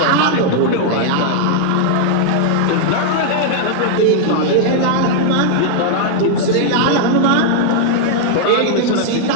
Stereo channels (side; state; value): both; different; correlation -0.01